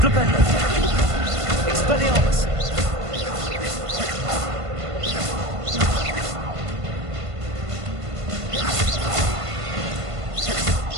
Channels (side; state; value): left; late; 1.5 ms